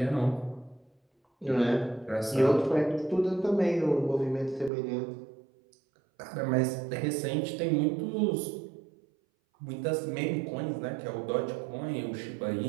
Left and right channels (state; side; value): drops out; left; at 4.7 s